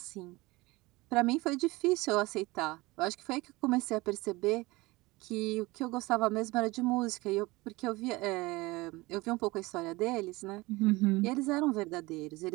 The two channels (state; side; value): quieter; left; 22.0 dB